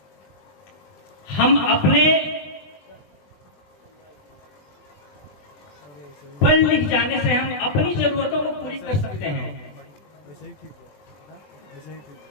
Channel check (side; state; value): right; late; 20 ms